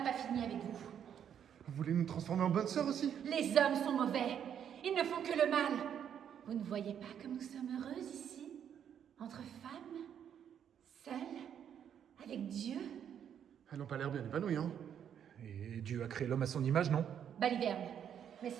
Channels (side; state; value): left; quieter; 8.9 dB